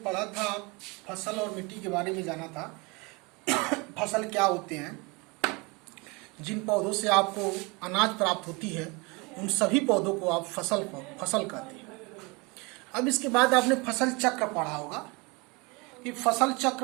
पढ़ा था, फसल और मिट्टी के बारे में जाना था। फसल क्या होते हैं, जिन पौधों से आपको अनाज प्राप्त होती है उन सभी पौधों को आप फसल कहते हैं। अब इसके बाद आपने फसल चक्र पढ़ा होगा कि फसल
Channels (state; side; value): quieter; left; 26.7 dB